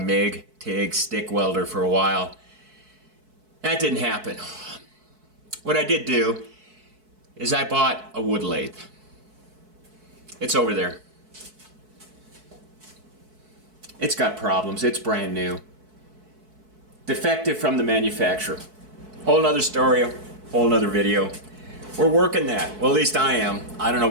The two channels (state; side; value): late; left; 4.6 ms